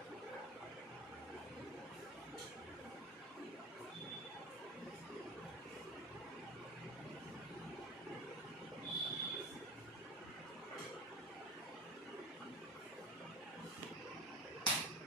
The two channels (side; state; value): both; normal; correlation 0.32